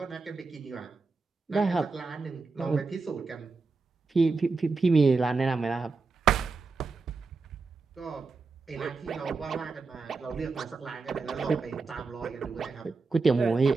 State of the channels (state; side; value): quieter; left; 4.2 dB